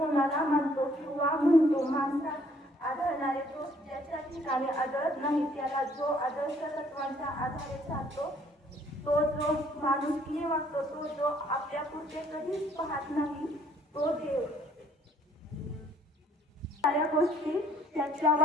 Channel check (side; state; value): both; normal; correlation 0.62